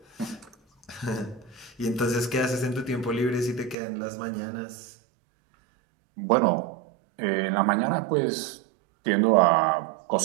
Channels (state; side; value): drops out; left; at 3.8 s